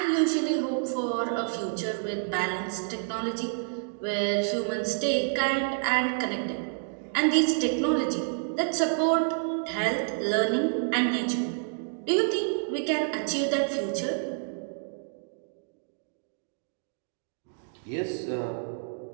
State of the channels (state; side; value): silent; left; digital silence